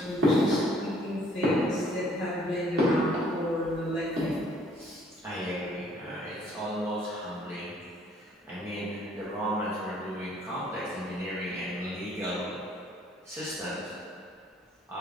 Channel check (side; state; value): both; normal; correlation 0.61